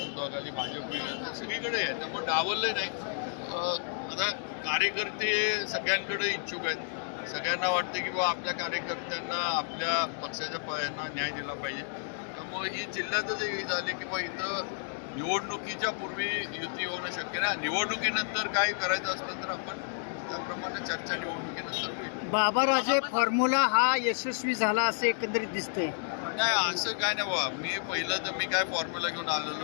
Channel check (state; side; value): silent; right; digital silence